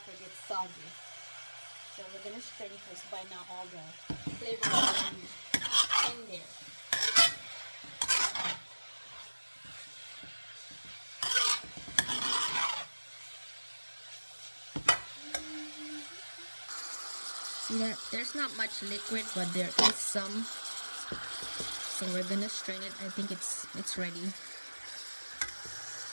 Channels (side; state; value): both; inverted; correlation -1.00